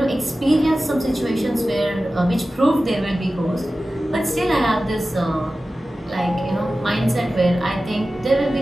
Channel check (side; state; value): both; normal; correlation 0.95